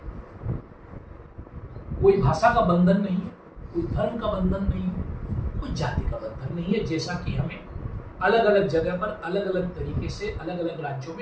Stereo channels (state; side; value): identical; both; correlation 1.00